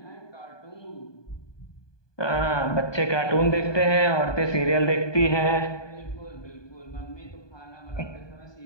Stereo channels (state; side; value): late; right; 1.2 ms